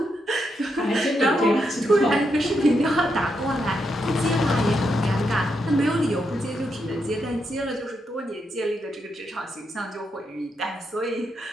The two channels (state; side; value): normal; both; correlation 0.82